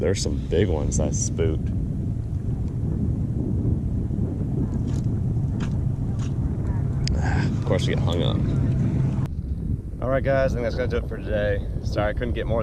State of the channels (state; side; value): identical; both; correlation 1.00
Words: some big ones I spooked. Of course, we get hung up. Alright guys, I think that's gonna do it for today. Sorry I couldn't get more